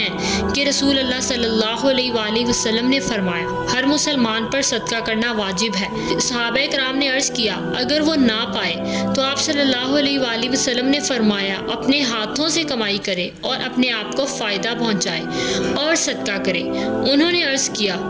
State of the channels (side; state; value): both; identical; correlation 1.00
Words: कि रसूल अल्लाह सल्लल्लाहु अलैहि वसल्लम ने फरमाया, हर मुसलमान पर सदका करना वाजिब है। सहाबा कराम ने अर्ज़ किया, अगर वो ना पाए तो आप सल्लल्लाहु अलैहि वसल्लम ने फरमाया, अपने हाथों से कमाई करे और अपने आप को फ़ायदा पहुँचाए और सदका करे। उन्होंने अर्ज़ किया